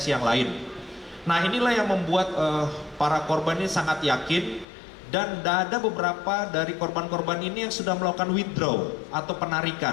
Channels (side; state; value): right; drops out; at 4.7 s